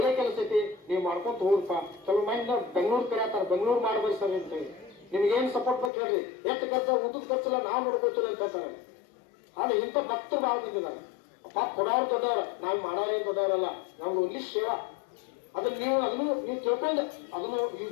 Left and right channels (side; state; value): right; drops out; at 5.9 s